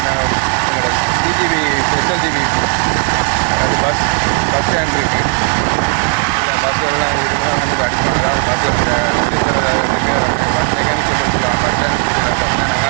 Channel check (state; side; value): quieter; left; 37.6 dB